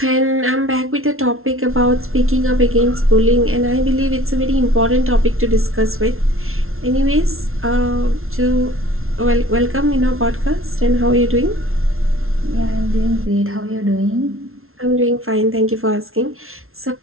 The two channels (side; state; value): left; late; 0.62 ms